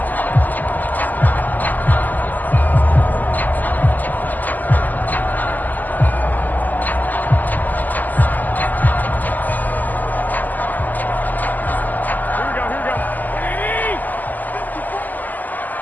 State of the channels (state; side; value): late; right; 0.084 ms